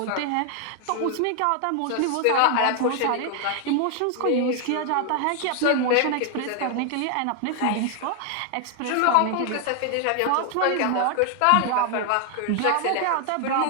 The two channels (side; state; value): both; different; correlation 0.00